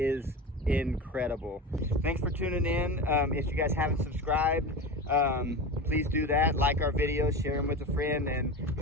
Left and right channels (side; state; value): both; normal; correlation 0.27